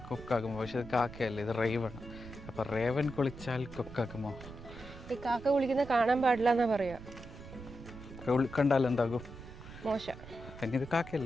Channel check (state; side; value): noise; right; rumble, 14 dB below the sound